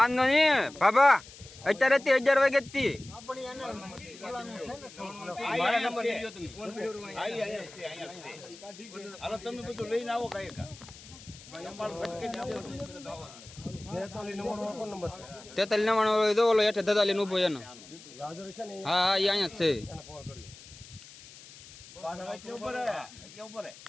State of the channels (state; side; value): noise; left; hiss, 19 dB below the sound